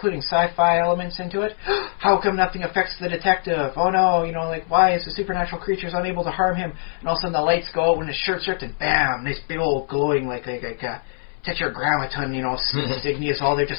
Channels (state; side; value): silent; right; 64 dB below the other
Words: sci-fi elements into it. How come nothing affects the detective? Oh no, why is the supernatural creatures unable to harm him? And all of a sudden the lights go out when his shirt's ripped, and bam, nice big old glowing tetragrammaton, insignias all there